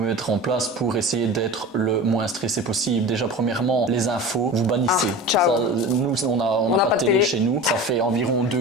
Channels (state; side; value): normal; both; correlation 0.33